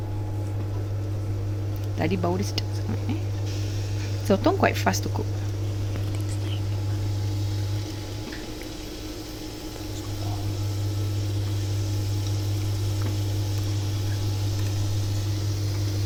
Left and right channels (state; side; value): identical; both; correlation 1.00